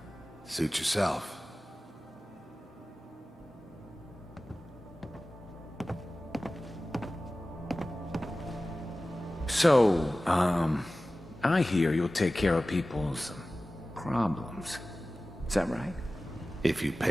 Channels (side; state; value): both; normal; correlation 0.96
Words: Suit yourself. So, I hear you'll take care of people's problems. Is that right? If you